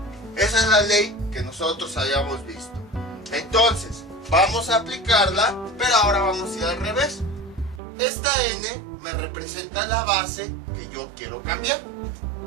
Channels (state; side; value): drops out; left; at 7.8 s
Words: Esa es la ley que nosotros habíamos visto. Entonces, vamos a aplicarla, pero ahora vamos a ir al revés. Esta n me representa la base que yo quiero cambiar.